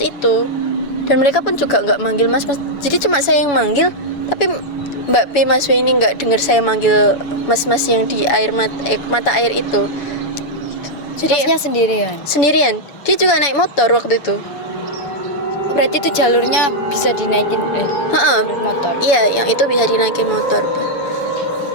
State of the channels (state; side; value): late; right; 7.0 ms